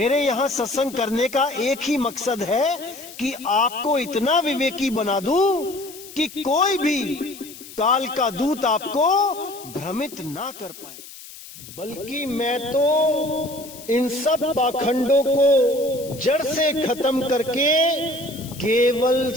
यहां सत्संग करने का एक ही मकसद है कि आपको इतना विवेकी बना दूं कि कोई भी काल का दूत आपको भ्रमित ना कर पाए। बल्कि मैं तो इन सब पाखंडों को जड़ से खत्म करके केवल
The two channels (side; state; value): left; noise; hiss, 16 dB below the sound